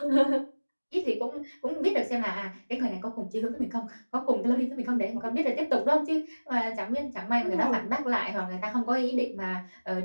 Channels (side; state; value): both; inverted; correlation -1.00